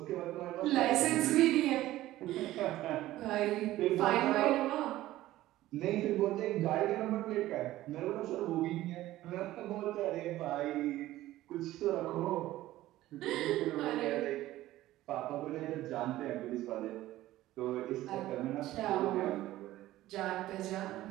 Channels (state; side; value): quieter; left; 15.5 dB